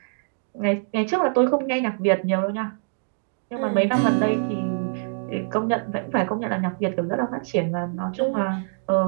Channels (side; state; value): left; silent; digital silence